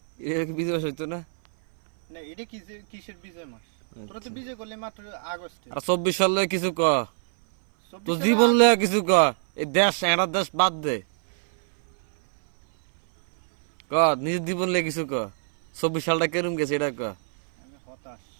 এটা কি বিজয় হইতো না? না এটা কিসের বিজয় মাস? তোরা তো বিজয় করলি মাত্র আগস্টে। আর 24 সালে কিছু ক, তো 24 জীবন লয়ে কিছু ক। এই দেশ একটা দেশ বাদ দে, ক নিজের জীবন লয়ে কিছু ক। 24 সালটা কেরম গেছে এটা ক। আমি হতাশ,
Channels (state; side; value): silent; left; 59 dB below the other